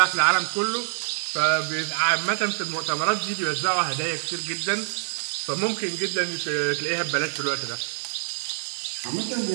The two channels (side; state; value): left; silent; digital silence